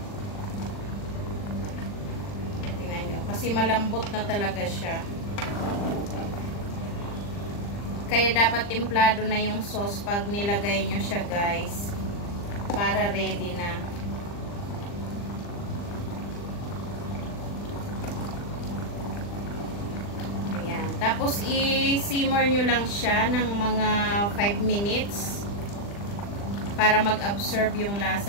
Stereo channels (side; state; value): right; late; 40 ms